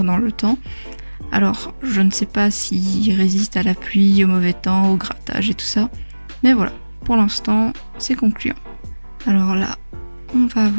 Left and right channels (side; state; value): both; inverted; correlation -1.00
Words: dans le temps. Alors, je ne sais pas s'ils résistent à la pluie, au mauvais temps, au grattage et tout ça. Mais voilà, pour l'instant, c'est concluant. Alors là, on va